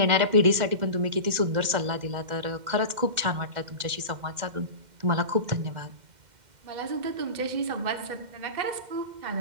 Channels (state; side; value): late; left; 2.1 ms